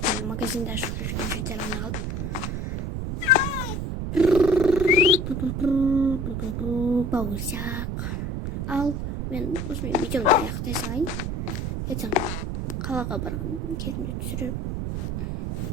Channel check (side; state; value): right; noise; rumble, 3 dB below the sound